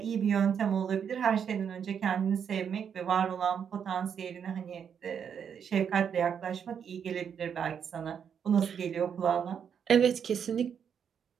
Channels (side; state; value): left; quieter; 7.6 dB